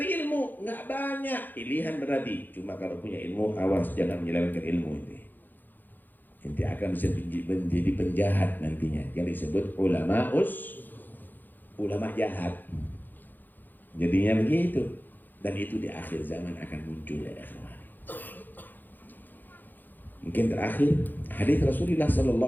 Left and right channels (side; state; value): right; late; 0.088 ms